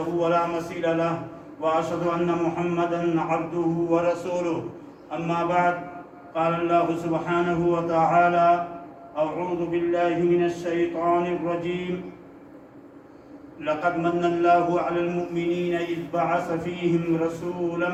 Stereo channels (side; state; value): both; identical; correlation 1.00